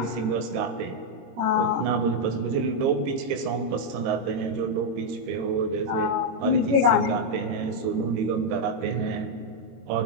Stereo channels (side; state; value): left; late; 22 ms